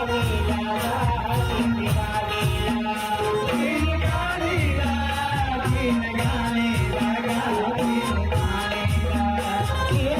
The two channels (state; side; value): identical; both; correlation 1.00